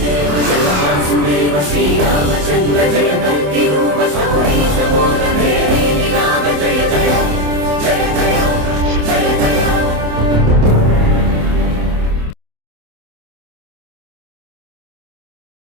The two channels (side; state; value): left; late; 27 ms